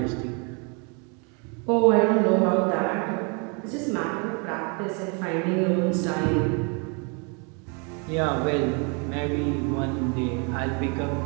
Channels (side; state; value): left; quieter; 34.6 dB